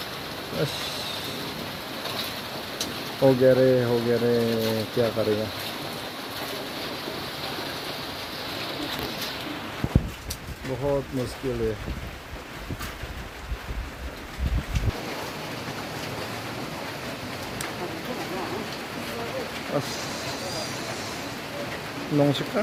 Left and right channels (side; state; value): both; identical; correlation 1.00